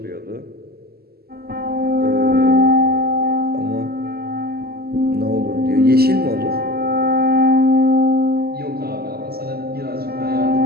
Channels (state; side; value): late; left; 0.45 ms